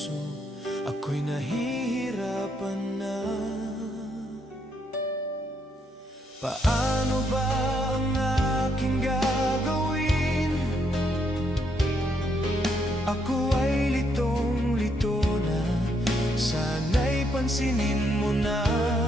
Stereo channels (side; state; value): both; normal; correlation 0.75